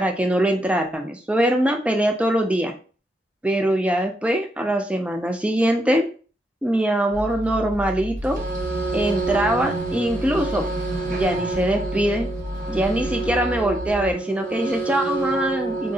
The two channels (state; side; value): normal; both; correlation 0.78